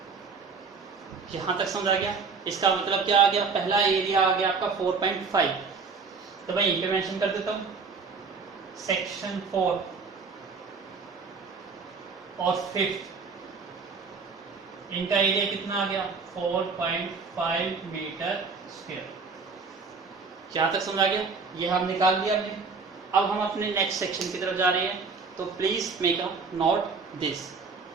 यहां तक समझ आ गया। इसका मतलब क्या आ गया, पहला एरिया आ गया आपका 4.5। तो मैं यहीं पे मेंशन कर देता हूं, सेक्शन 4 और 5th, इनका एरिया कितना आ गया, 4.5 मीटर स्क्वायर। यहां तक समझ आ गया, ये हम निकाल दिया हमने। अब हम अपने नेक्स्ट सेक्शन की तरफ जा रहे हैं, तो please make a note this.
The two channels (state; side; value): quieter; left; 4.9 dB